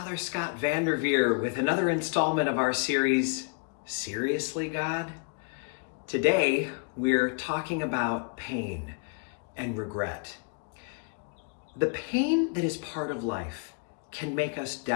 Scott Vanderveer with another installment of our series, Seriously, God? Today, we're talking about pain and regret. The pain that is part of life can make us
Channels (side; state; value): right; quieter; 35.2 dB